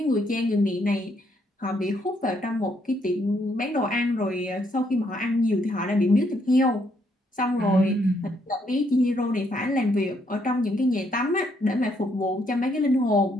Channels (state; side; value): normal; both; correlation 0.72